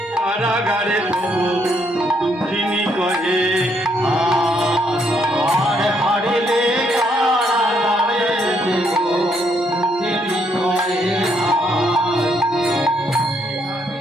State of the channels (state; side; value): normal; both; correlation 0.73